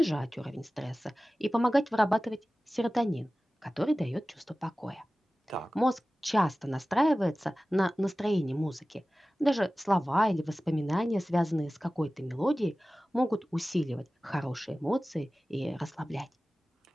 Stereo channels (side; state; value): both; normal; correlation 0.96